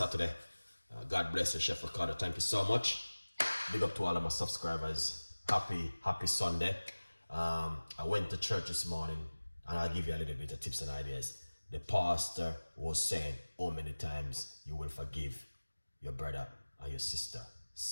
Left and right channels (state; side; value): inverted; both; correlation -1.00